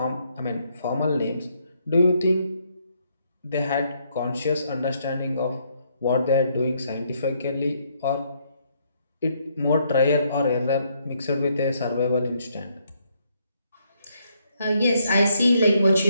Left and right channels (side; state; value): both; inverted; correlation -0.73